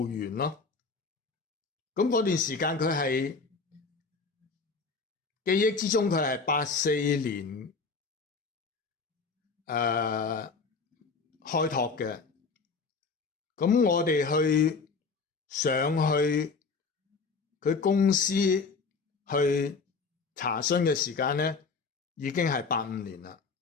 園咯。咁嗰段時間佢係記憶之中，佢係84年開拓嘅。咁我哋上去佢公司去查詢嘅時間咧，已經係85年啦。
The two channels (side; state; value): right; quieter; 4.6 dB